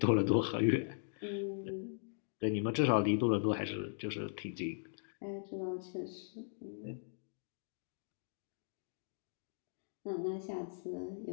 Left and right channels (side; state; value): right; silent; digital silence